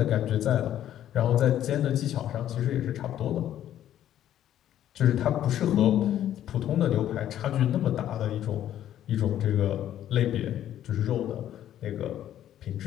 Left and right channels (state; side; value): quieter; right; 11.5 dB